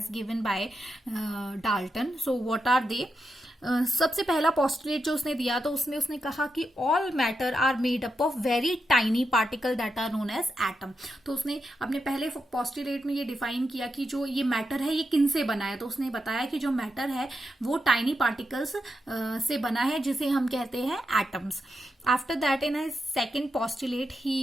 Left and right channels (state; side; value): normal; both; correlation 0.86